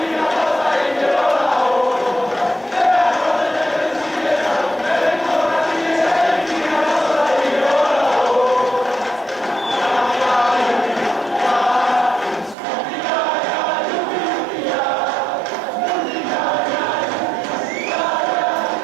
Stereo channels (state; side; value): drops out; left; at 12.6 s